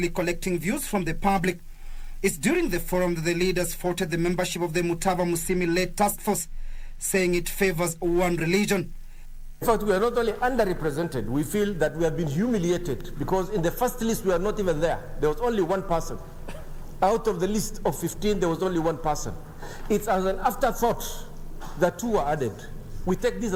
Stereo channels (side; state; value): both; identical; correlation 1.00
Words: collecting views from the public. It's during the forum that the leaders faulted the membership of the Mutava Musyimi-led task force, saying it favors one religion. In fact, we are not only underrepresented, we feel that we have been humiliated because in the first list we are not even there. There was only one person. Out of the list of 15, there was only one person. It's as an afterthought that 2 were added. We take this